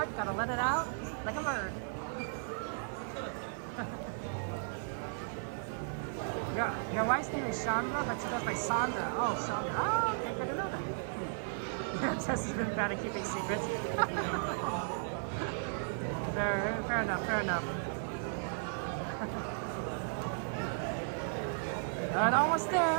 gotta let it out like a bird. Your wife's name is Chandra, but she goes by Sandra. Oh, Sandra. Oh, okay, good to know that. Jess has been bad at keeping secrets. fair enough. And almost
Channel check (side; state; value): left; silent; digital silence